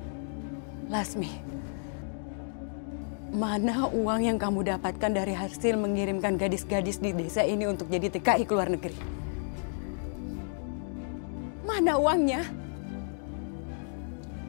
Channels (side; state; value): right; silent; digital silence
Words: Lasmi, mana uang yang kamu dapatkan dari hasil mengirimkan gadis-gadis di desa ini untuk jadi TKI ke luar negeri? Mana uangnya?